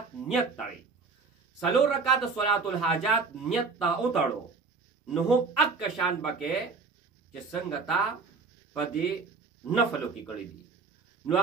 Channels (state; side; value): quieter; left; 4.7 dB